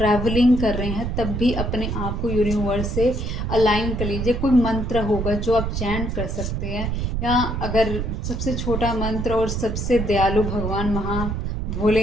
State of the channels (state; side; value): noise; right; rumble, 2 dB below the sound